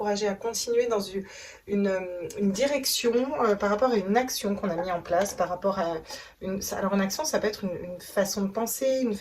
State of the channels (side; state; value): both; identical; correlation 1.00